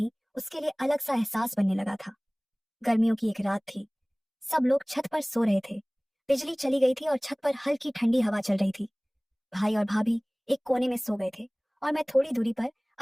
उसके लिए अलग सा एहसास बनने लगा था। गर्मियों की एक रात थी। सब लोग छत पर सो रहे थे। बिजली चली गई थी और छत पर हल्की ठंडी हवा चल रही थी। भाई और भाभी एक कोने में सो गए थे और मैं थोड़ी दूरी पर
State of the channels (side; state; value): both; identical; correlation 1.00